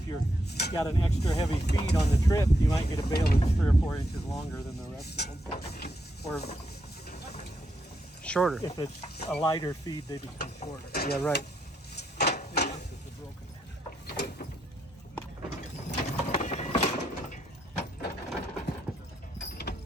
you've got an extra heavy feed on the trip, you might get a bale that's 3 or 4 inches longer than the rest of them. Or Shorter. if it's a lighter feed, they become shorter. Yeah, right.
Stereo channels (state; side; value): normal; both; correlation 0.80